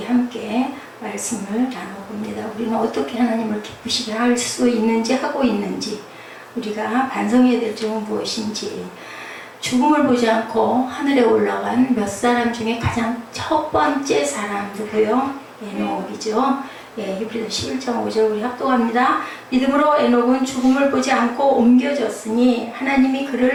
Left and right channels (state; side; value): identical; both; correlation 1.00